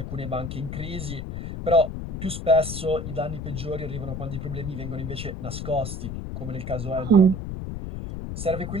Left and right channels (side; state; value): left; noise; rumble, 6 dB below the sound